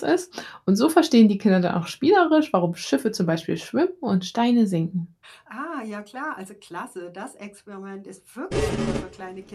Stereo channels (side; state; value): both; identical; correlation 1.00